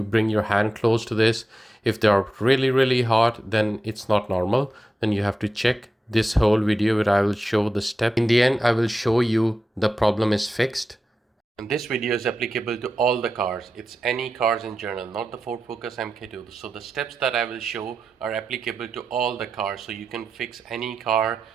bring your hand close to this, if they are really hot, then it's not normal. Then you have to check this whole video where I will show the step. In the end, I will show you the problem is fixed. And this video is applicable to all the cars. It's any cars in general, not the Ford Focus Mk2. So the steps that I will show are applicable to all the cars. So you can fix any car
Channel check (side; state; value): both; normal; correlation 0.91